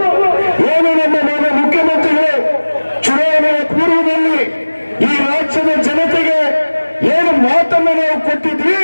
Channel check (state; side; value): inverted; both; correlation -1.00